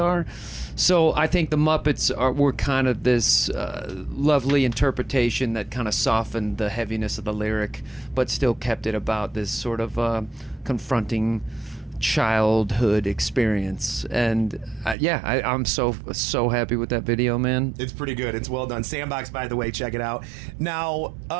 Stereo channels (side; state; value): left; drops out; at 15.0 s